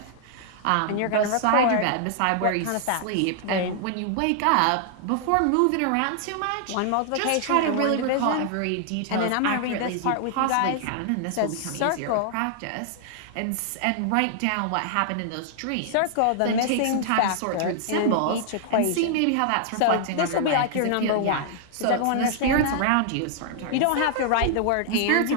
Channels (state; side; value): different; both; correlation 0.00